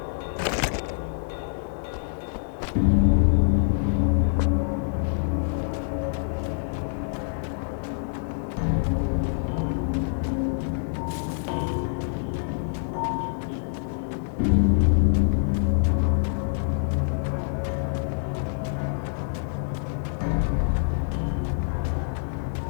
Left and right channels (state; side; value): silent; right; digital silence